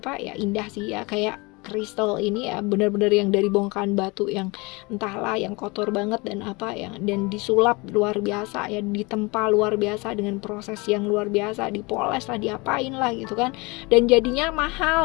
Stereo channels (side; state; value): right; quieter; 26.3 dB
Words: ya, indah sih ya. Kayak kristal ini ya benar-benar yang dari bongkahan batu yang entahlah yang kotor banget dan dan disulap luar biasa ya, ditempa luar biasa dengan proses yang luar biasa, dipoles lah, diapain lah gitu kan, dan jadinya